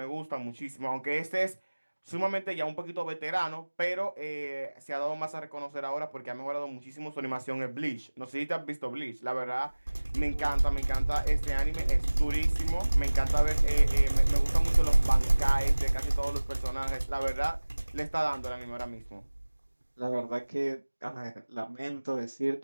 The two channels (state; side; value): inverted; both; correlation -1.00